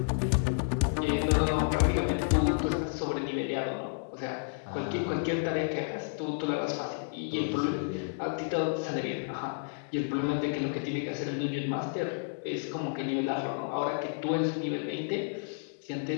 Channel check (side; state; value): right; silent; digital silence